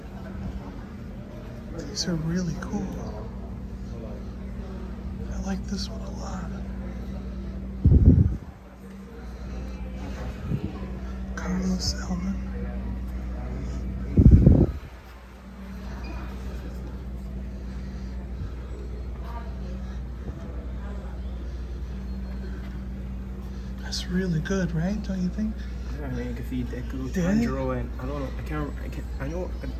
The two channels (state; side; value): identical; both; correlation 1.00